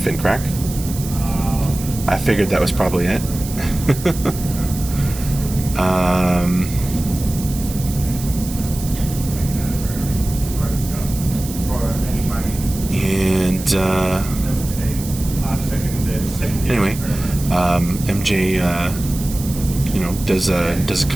I figured that was probably it. Anyway, MJ, does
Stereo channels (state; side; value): noise; right; hiss, 12 dB below the sound